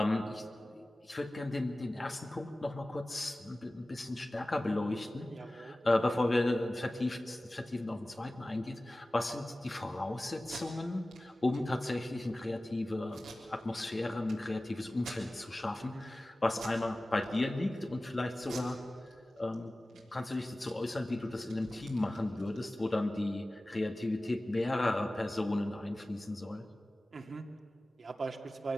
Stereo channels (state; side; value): normal; both; correlation 0.97